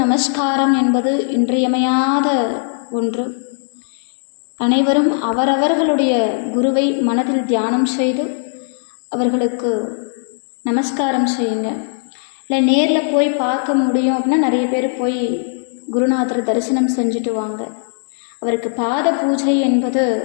நமஸ்காரம் என்பது இன்றியமையாத ஒன்று. அனைவரும் அவரவர்களுடைய குருவை மனதில் தியானம் செய்து அவர்களுக்கு நமஸ்காரம் செய்யுங்க. இல்லை நேரில் போய் பார்க்க முடியும் அப்படின்னா நிறைய பேர் போய் குருநாதர் தரிசனம் செஞ்சுட்டு வாங்க. அவருக்கு பாத பூஜை என்பது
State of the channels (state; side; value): silent; right; digital silence